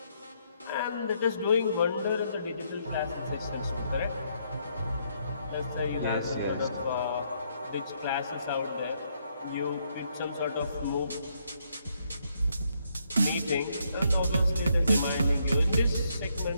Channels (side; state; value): both; inverted; correlation -0.74